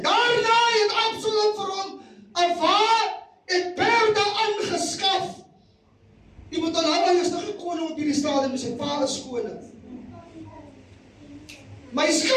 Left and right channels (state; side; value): identical; both; correlation 1.00